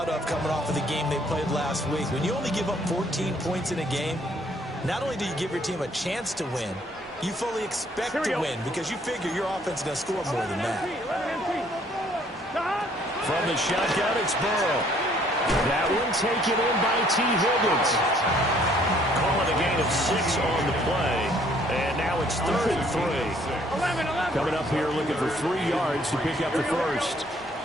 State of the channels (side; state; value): both; normal; correlation 0.62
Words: of coming off of the game they played last week. When you only give up 14 points in a game, not only do you give your team a chance to win, you fully expect to win because you figure your offense is going to score more than that. From the shotgun, it's Burrow. That one taken in by T. Higgins. Calling a gain of 6 on the play. And now it's 3rd and 3. Coming up here looking for 3 yards to pick up the first.